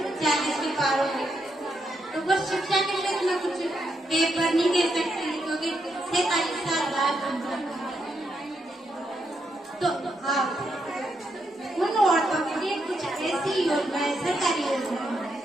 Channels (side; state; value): both; normal; correlation 0.80